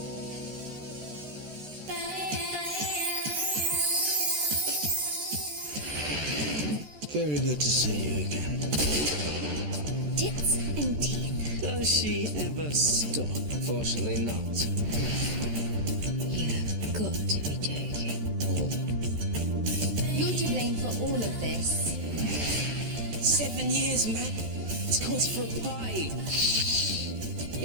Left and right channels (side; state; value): left; late; 14 ms